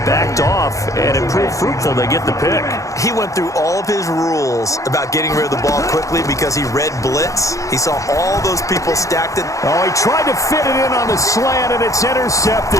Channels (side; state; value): right; late; 0.16 ms